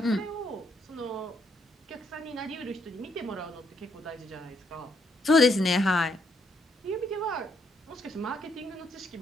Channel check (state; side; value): normal; both; correlation 0.73